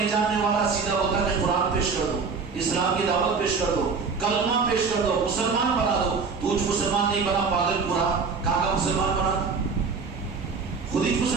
جاننے والا سیدھا ہوتا کہ قرآن پیش کر دو، اسلام کی دعوت پیش کر دو، کلمہ پیش کر دو، مسلمان بنا دو، تو مسلمان نہیں بنا پاگل پورا، کہاں کا مسلمان بنا؟ خود ہی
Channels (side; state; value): left; quieter; 5.0 dB